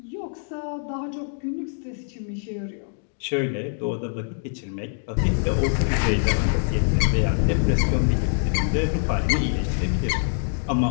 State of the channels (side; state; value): right; silent; digital silence